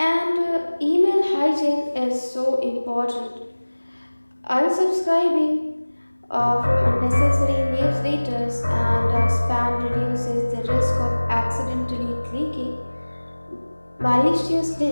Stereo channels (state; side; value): inverted; both; correlation -1.00